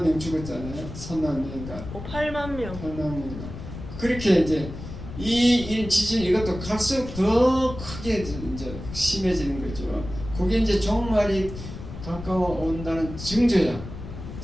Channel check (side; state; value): left; noise; rumble, 10 dB below the sound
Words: 명 죽었잖아요. 3만 명인가? 8만 명. 8만 명인가? 그렇게 이제 이 지진 이것도 갈수록 더 크게 이제 심해지는 거죠. 그게 이제 종말이 가까워 온다는 증거야.